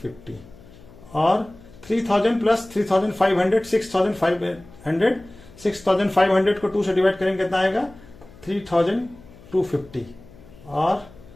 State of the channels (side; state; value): left; noise; hum, 22 dB below the sound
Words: और 3000 प्लस 3500 6500, 6500 को 2 से डिवाइड करेंगे कितना आएगा 3250, और